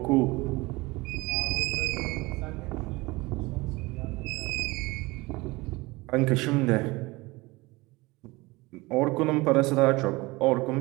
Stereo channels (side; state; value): left; quieter; 22.5 dB